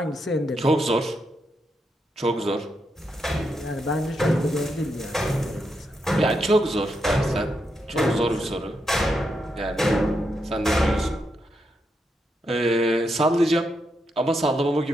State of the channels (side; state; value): both; normal; correlation 0.82